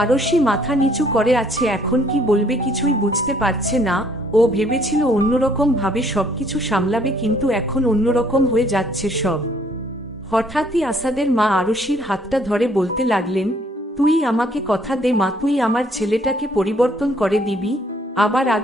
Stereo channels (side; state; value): both; normal; correlation 0.64